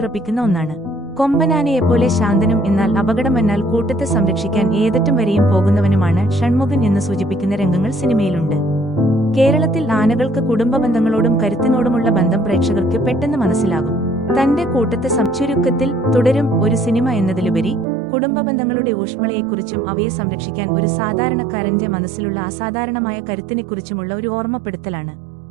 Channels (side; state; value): left; drops out; at 17.9 s